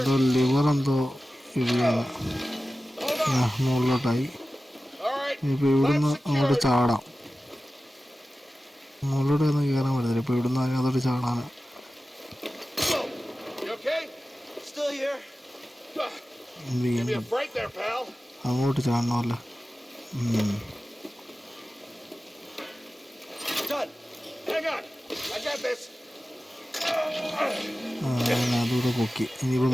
ലിവർ എന്തോ ഇടിയാണ്. മുകളിലോട്ടായി. ഇനിയിപ്പോൾ ഇവിടുന്ന് അങ്ങോട്ട് ചാടാം. മുകളിലോട്ട് ഒന്നും കയറാൻ പറ്റത്തില്ല. ഇപ്പോൾ ഇവിടുന്ന് അതിനകത്തോട്ട് ചാടാൻ. അങ്ങോട്ട് ചാടണമല്ലോ. അതൂടെ പൊക്കി. ഇനിയിപ്പോൾ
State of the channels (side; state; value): both; normal; correlation 0.95